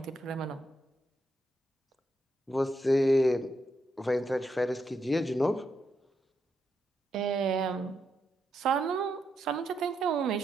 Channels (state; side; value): normal; both; correlation 0.81